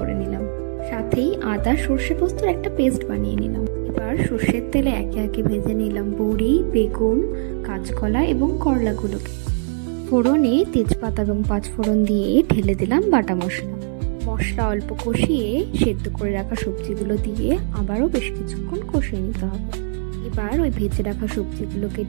নিলাম। সাথেই আদা সর্ষে পোস্তর একটা পেস্ট বানিয়ে নিলাম। এবার সর্ষের তেলে একে একে ভেজে নিলাম বড়ি, বেগুন, কাঁচকলা এবং করলাগুলোকে। ফোড়নে তেজপাতা এবং 5 ফোড়ন দিয়ে ঢেলে দিলাম বাটা মশলা। মশলা অল্প কষিয়ে সেদ্ধ করে রাখা সবজিগুলো দিয়ে আবারও বেশ কিছুক্ষণ কষিয়ে নিতে হবে। এবার ওই ভেজে রাখা সবজিগুলোকে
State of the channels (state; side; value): silent; left; digital silence